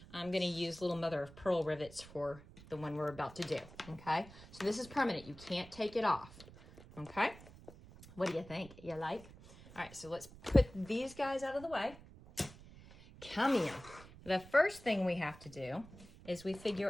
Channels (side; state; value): right; noise; rumble, 19 dB below the sound